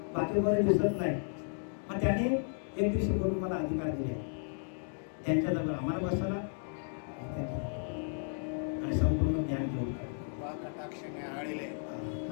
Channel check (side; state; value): right; silent; digital silence